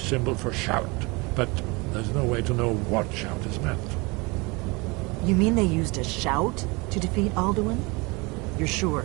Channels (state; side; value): quieter; left; 26.6 dB